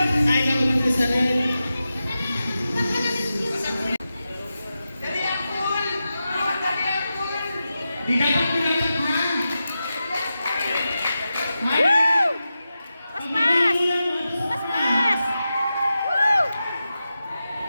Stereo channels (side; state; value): both; inverted; correlation -0.91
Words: Ay, ako man sa red. Di dapat pinataghan. Woo! Paspas! Paspas! Woo!